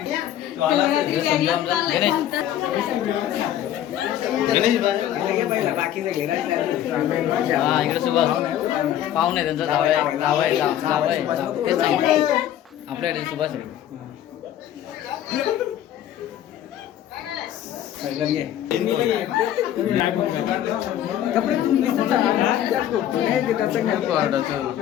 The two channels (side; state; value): right; quieter; 11.5 dB